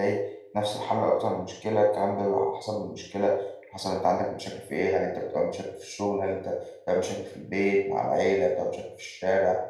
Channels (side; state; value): both; identical; correlation 1.00